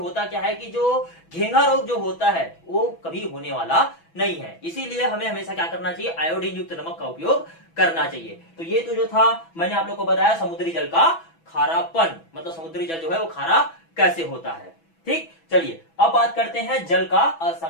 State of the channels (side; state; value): right; late; 6.1 ms